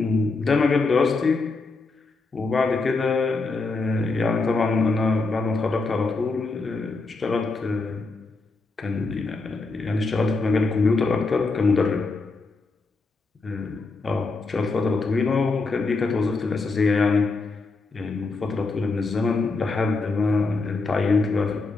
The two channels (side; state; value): right; quieter; 3.8 dB